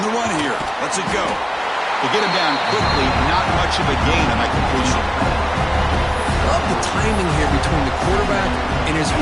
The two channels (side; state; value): both; identical; correlation 1.00